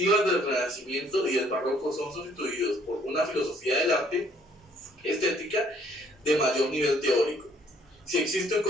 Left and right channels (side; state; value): both; normal; correlation 0.63